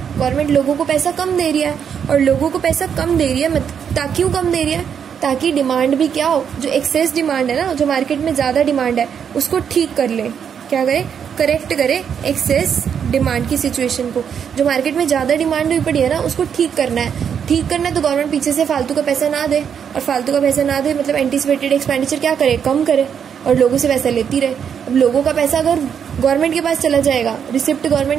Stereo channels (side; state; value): left; quieter; 7.7 dB